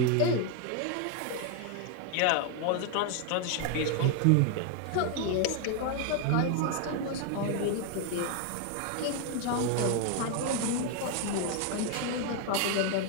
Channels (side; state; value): both; different; correlation 0.01